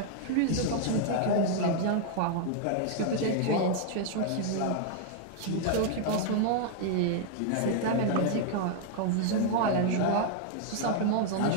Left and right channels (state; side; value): different; both; correlation -0.01